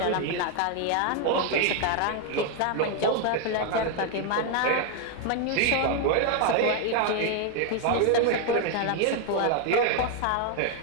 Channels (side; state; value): both; different; correlation 0.01